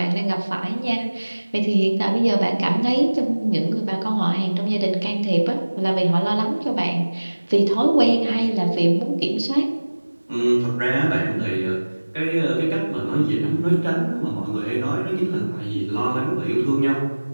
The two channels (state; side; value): inverted; both; correlation -1.00